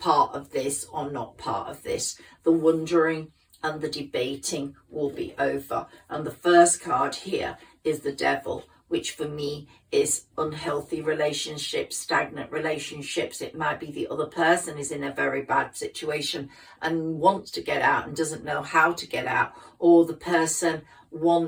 of this or not part of this. The wondering and the debating will be over. And the first card here is the Devil, which for me is unhealthy relationships, stagnant relationships. It might be the other person is in a very bad situation and wants to get out and doesn't know how to get out, or the person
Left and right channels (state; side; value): identical; both; correlation 1.00